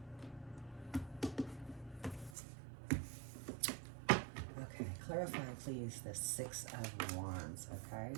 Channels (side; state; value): left; drops out; at 2.4 s